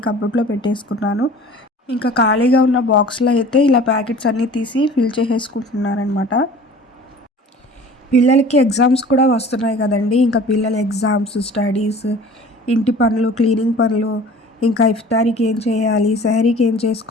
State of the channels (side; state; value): both; normal; correlation 0.45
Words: కబోర్డ్లో పెట్టేసుకున్నాను. ఇంకా ఖాళీగా ఉన్న బాక్స్లో అయితే ఇలా ప్యాకెట్స్ అన్నీ తీసి ఫిల్ చేసేసుకుంటున్నానమాట. పిల్లలకి ఎగ్జామ్స్ కూడా వస్తున్నాయి కదండి. ఇంకా పిల్లల ఎగ్జామ్స్, స్టడీస్, ఇంటి పనులు, క్లీనింగ్ పనులు, ఇంకా ఇఫ్తారీకి ఏం చేయాలి, సెహరీకి ఏం